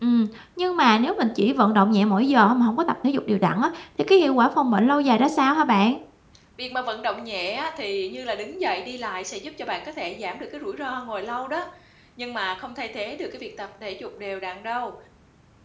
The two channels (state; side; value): identical; both; correlation 1.00